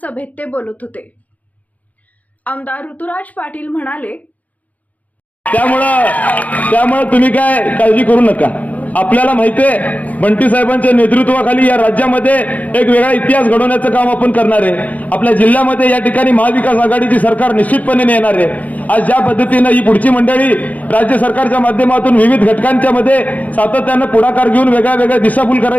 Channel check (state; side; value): late; right; 0.075 ms